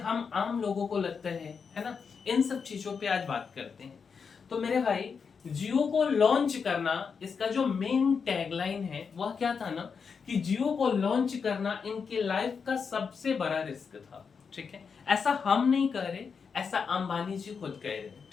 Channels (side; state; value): right; quieter; 5.8 dB